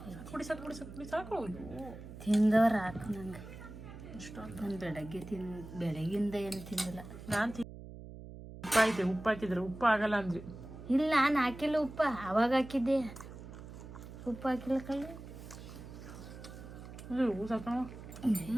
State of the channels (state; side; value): noise; right; hum, 13 dB below the sound